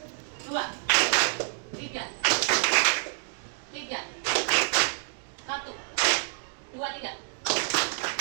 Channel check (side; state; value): left; silent; digital silence